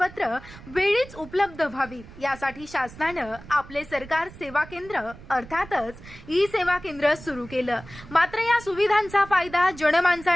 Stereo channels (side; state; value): right; noise; rumble, 18 dB below the sound